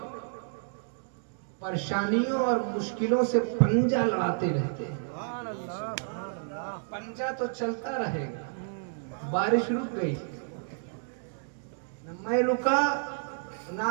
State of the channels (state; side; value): silent; left; digital silence